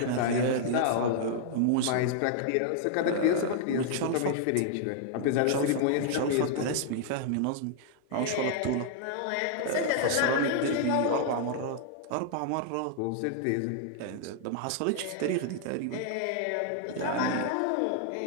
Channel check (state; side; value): different; both; correlation -0.01